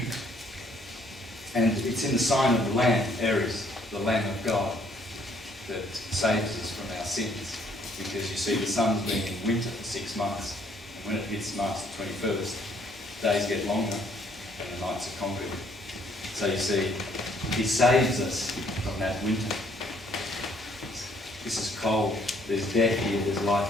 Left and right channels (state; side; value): normal; both; correlation 0.65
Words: it's in the sign of the Lamb, Aries, the Lamb of God, that saves us from our sins. Because you see, the sun's been in winter for 6 months, and when it hits March the 21st, days get longer and the nights are conquered. So you see, he saves us from that winter. This is cold, there's death here, there's